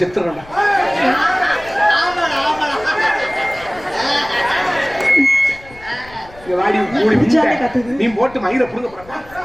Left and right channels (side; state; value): left; noise; rumble, 22 dB below the sound